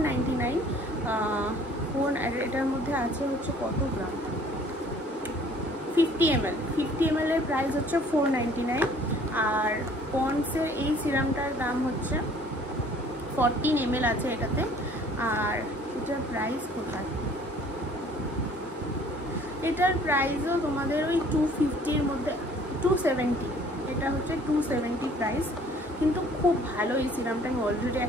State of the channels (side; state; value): both; normal; correlation 0.55